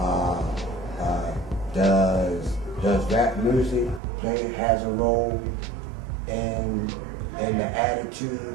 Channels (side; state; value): left; drops out; at 4.0 s